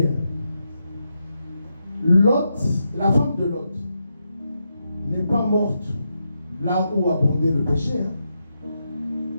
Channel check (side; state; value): both; inverted; correlation -0.84